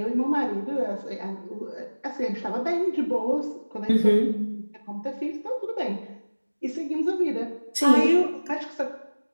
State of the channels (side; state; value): both; inverted; correlation -1.00